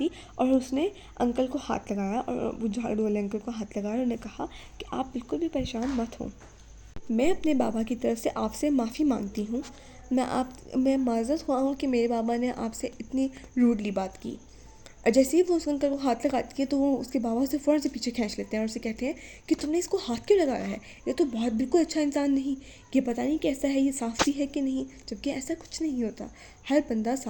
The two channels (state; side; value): identical; both; correlation 1.00